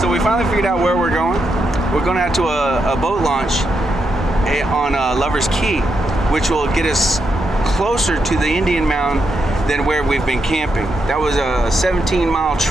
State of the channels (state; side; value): normal; both; correlation 0.83